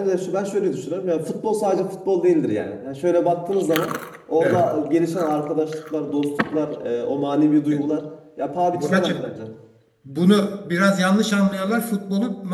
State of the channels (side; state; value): both; identical; correlation 1.00